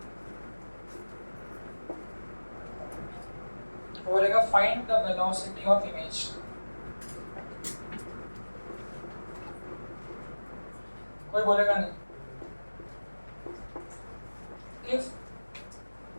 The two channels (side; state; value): both; inverted; correlation -1.00